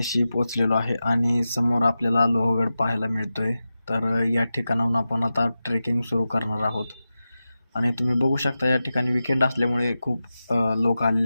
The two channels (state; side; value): inverted; both; correlation -0.93